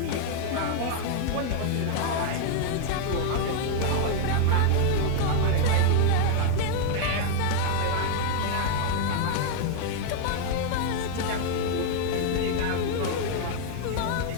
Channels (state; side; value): different; both; correlation 0.00